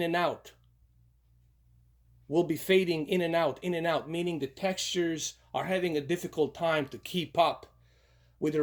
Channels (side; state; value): both; identical; correlation 1.00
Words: out. Will be fading in and out, meaning the textures are having a difficult time to keep up with the